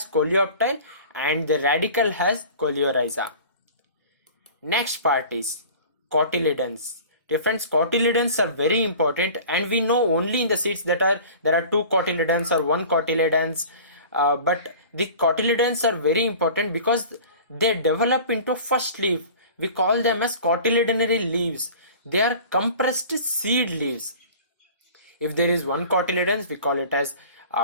coleoptile and the radicle has coleorhiza. Next part is cotyledons. Different cotyledons are very important, and we know only in the seeds that there are two cotyledons or one cotyledons, but the cotyledons are very important because they develop into first leaf. We call them as cotyledonary leaves. They are compressed seed leaves. If there is one cotyledons, we call it as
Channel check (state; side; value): inverted; both; correlation -0.42